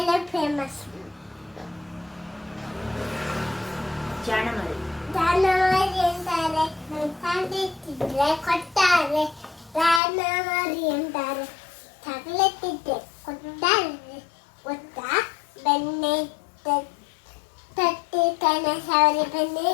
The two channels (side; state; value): right; drops out; at 10.0 s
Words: ಫೇಮಸ್. ಜಾಣಮರಿ ಅಂತಾರೆ. ತಂದಿಟ್ಟಿದ್ರೆ ಕೊಡ್ತಾರೆ. ಜಾನಮರಿ ಅಂತಾರೆ. ತಗಲತ್ತಿದ್ರೆ ಕೊಡ್ತಾರೆ. ಗೊತ್ತಾ? ಬೆಣ್ಣೆ ತಟ್ಟಿ ಕಣ ಸವರಿ ಬೆಣ್ಣೆ